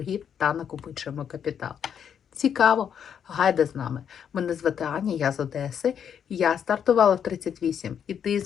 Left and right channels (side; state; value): right; quieter; 8.2 dB